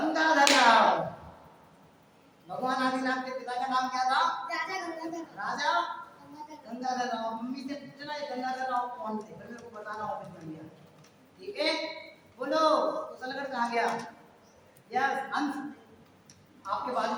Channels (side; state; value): both; identical; correlation 1.00